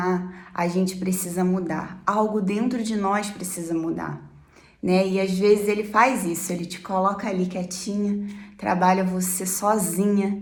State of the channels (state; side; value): identical; both; correlation 1.00